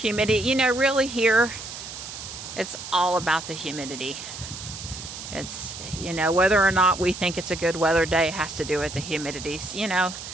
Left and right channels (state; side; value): noise; right; hiss, 10 dB below the sound